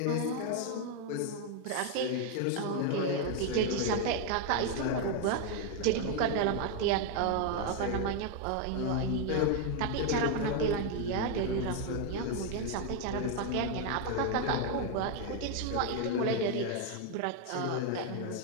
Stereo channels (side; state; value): both; different; correlation 0.01